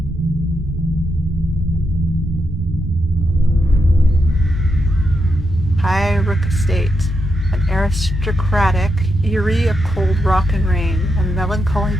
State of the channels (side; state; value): both; normal; correlation 0.84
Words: HighRook Estate. An aristocratic, eerie of cold rock and rain, a melancholy